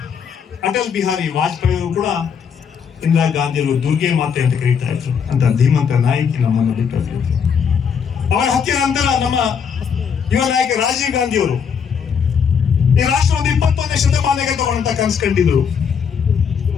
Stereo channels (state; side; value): quieter; right; 6.9 dB